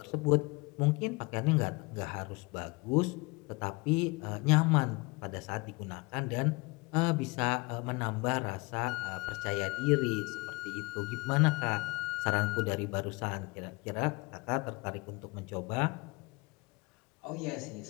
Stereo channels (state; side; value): quieter; right; 26.4 dB